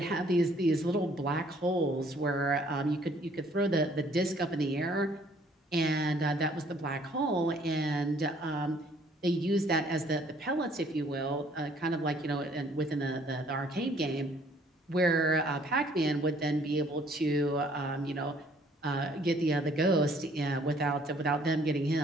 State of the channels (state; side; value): normal; both; correlation 0.61